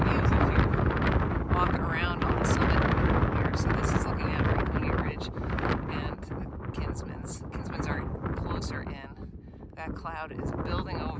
views if you walk around on the summit here. So this is looking at Franconia Ridge. cloud is building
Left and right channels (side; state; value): both; identical; correlation 1.00